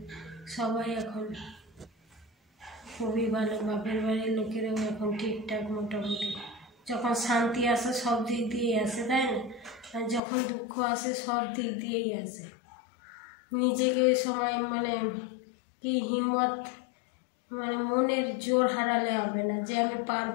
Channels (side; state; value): right; drops out; at 10.2 s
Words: সবাই এখন খুবই ভালো। বাপের বাড়ির লোকেরাও এখন ঠিকঠাক মোটামুটি, যখন শান্তি আসে সব দিক দিয়েই আসে, তাই না? আর যখন দুঃখ আসে সব দিক দিয়েই আসে। নিজেকে ওই সময় মানে কি হিম্মত, মানে মনের জোর হারালে হবে না যে আমি